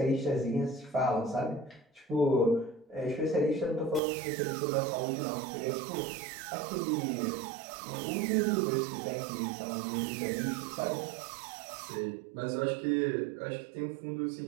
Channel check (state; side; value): drops out; left; at 4.0 s